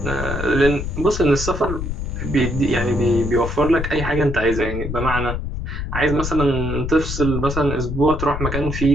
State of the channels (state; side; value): noise; left; rumble, 4 dB below the sound